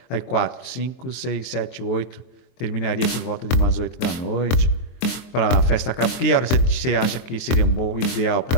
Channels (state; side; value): late; right; 23 ms